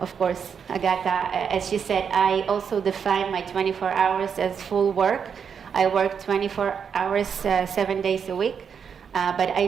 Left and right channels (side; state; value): left; quieter; 6.9 dB